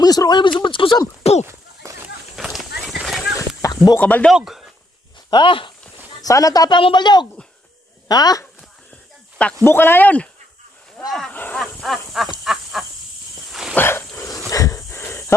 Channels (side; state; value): both; normal; correlation 0.74